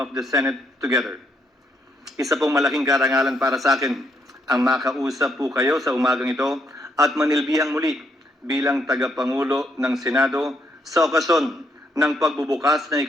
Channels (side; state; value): both; normal; correlation 0.74